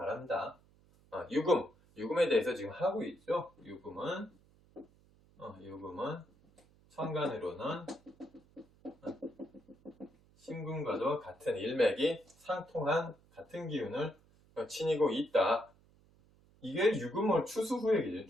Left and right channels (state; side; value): noise; right; hum, 29 dB below the sound